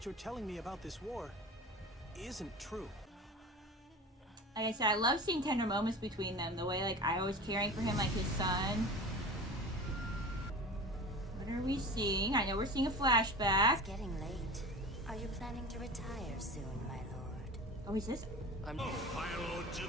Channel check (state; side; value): normal; both; correlation 0.34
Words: you're telling me about this war isn't true. Like I said, I love seeing tender moments between them. The way, like, I was caring for him like his son. What are we seeing? I know we're seeing a flashback. It's getting late. Are you planning to retire soon, my lord? Oh, is this? Fire Lord